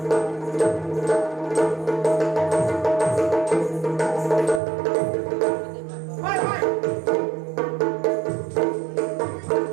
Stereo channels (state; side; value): drops out; left; at 4.6 s